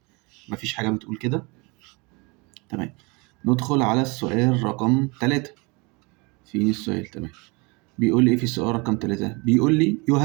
مفيش حاجه بتقول كده. تمام، ندخل على السؤال رقم 3. فين السؤال؟ تمام، بيقول لي ايه في السؤال رقم 3؟ بيقول لي you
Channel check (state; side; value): quieter; left; 28.1 dB